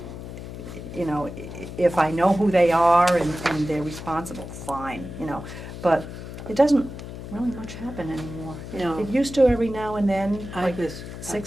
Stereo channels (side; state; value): left; noise; hum, 10 dB below the sound